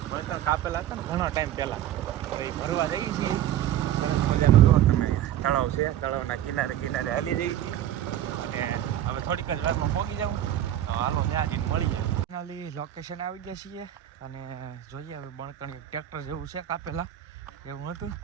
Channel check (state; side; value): quieter; left; 11.8 dB